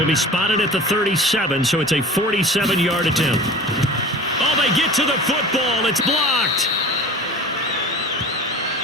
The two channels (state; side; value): normal; both; correlation 0.39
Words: be spotted at the 37, so it's a 47-yard attempt. Oh, they get to the football. It's blocked.